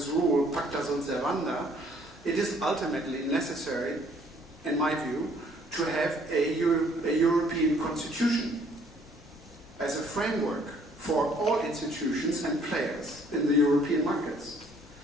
rule, pacta sunt servanda, it is ultimately necessary, in my view, to have a European constitution as a framework for all institutions and players in the European markets.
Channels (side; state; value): both; normal; correlation 0.62